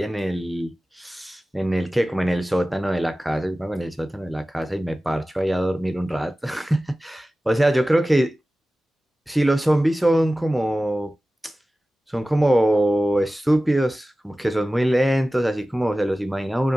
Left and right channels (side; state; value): both; normal; correlation 0.96